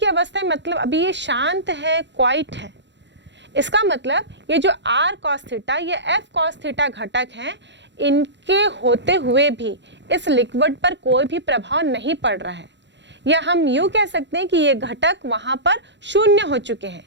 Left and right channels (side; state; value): left; late; 0.52 ms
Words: अवस्था में मतलब अभी ये शांत है, क्वाइट है। इसका मतलब ये जो R cos थीटा ये F cos थीटा घटक हैं, इनके होते हुए भी इस लिक्विड पर कोई भी प्रभाव नहीं पड़ रहा है, या हम यूं कह सकते हैं कि ये घटक वहां पर शून्य हो चुके हैं।